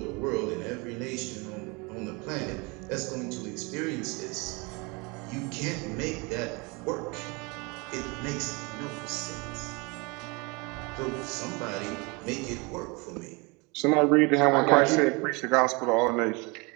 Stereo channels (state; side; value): quieter; left; 28.4 dB